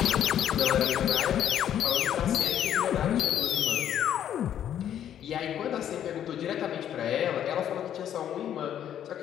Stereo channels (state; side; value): quieter; right; 10.2 dB